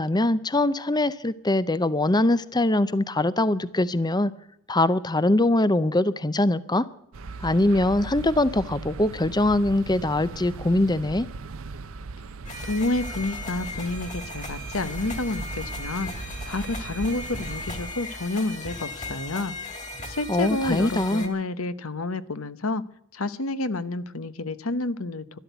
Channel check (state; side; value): normal; both; correlation 0.66